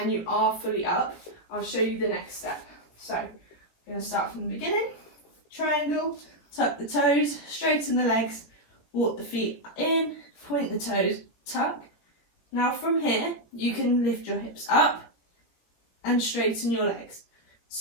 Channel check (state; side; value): late; right; 18 ms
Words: you are fully up, I'll show you the next step. So I'm going to start from the beginning. Triangle, tuck the toes, straighten the legs, walk the feet in, point the toes, tuck. Now from here, you can lift your hips up and straighten your legs.